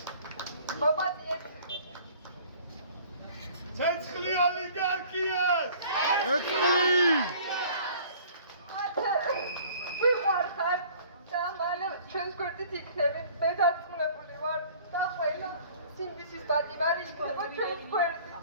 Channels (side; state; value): both; inverted; correlation -0.51